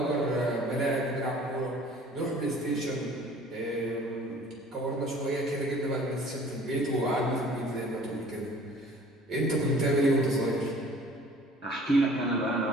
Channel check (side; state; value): both; normal; correlation 0.50